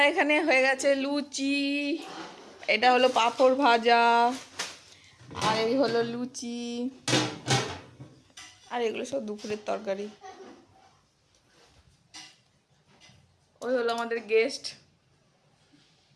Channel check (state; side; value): identical; both; correlation 1.00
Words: এখানে হয়ে গেছে লুচি, এটা হলো পাঁপড় ভাজা, আর এই হলো লুচি, আর এগুলো সব দুপুরের তরকারি। ওই হলো আমাদের গেস্ট।